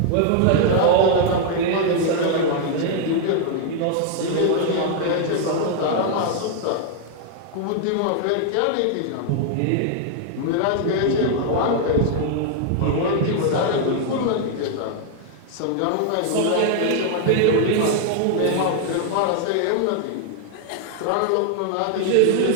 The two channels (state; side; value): different; both; correlation 0.00